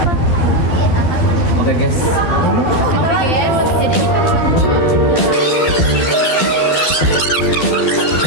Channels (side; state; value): right; late; 12 ms